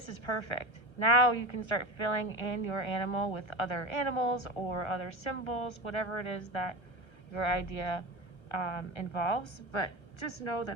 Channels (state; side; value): late; right; 1.3 ms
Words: is perfect. Now you can start filling in your animal with other animals or other symbols, whatever it is that your idea involves. But just know